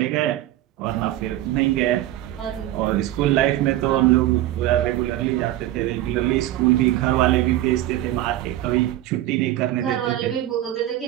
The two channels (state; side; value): quieter; left; 14.5 dB